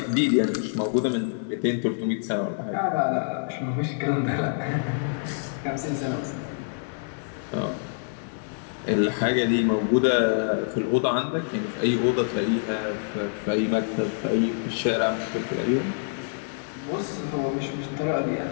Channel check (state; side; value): silent; right; digital silence